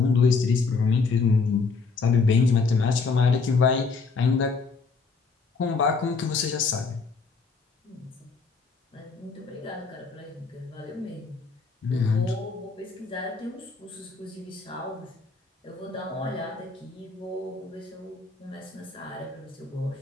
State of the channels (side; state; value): right; quieter; 4.6 dB